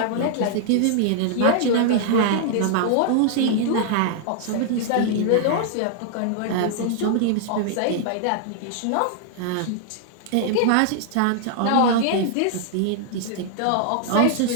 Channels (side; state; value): both; different; correlation -0.01